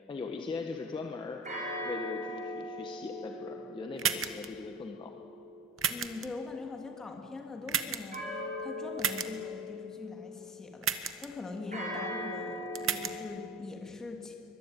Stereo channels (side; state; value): both; normal; correlation 0.37